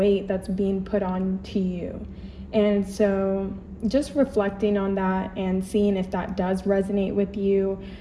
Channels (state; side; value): identical; both; correlation 1.00